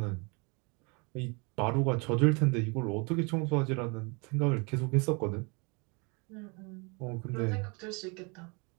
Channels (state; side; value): quieter; left; 31.4 dB